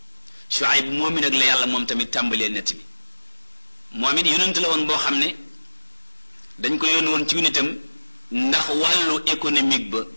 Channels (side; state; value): both; inverted; correlation -1.00